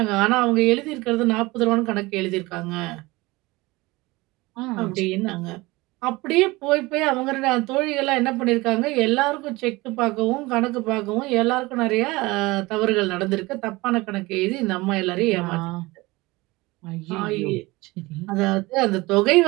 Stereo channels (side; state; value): left; quieter; 21.8 dB